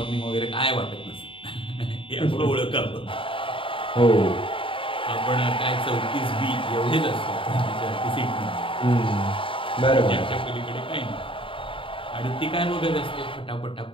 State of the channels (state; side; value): late; right; 0.25 ms